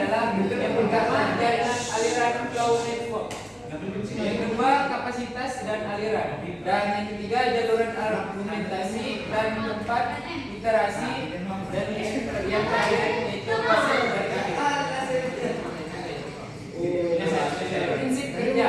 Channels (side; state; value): both; identical; correlation 1.00